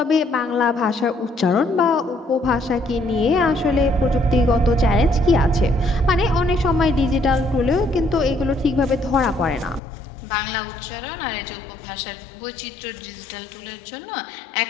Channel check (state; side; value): drops out; right; at 9.8 s